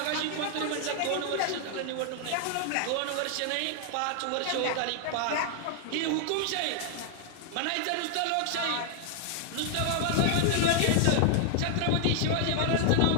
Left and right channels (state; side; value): different; both; correlation 0.00